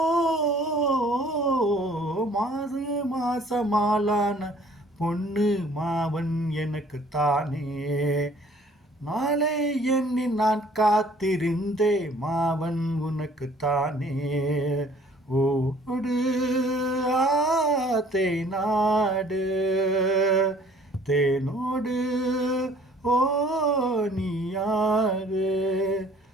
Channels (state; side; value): normal; both; correlation 0.55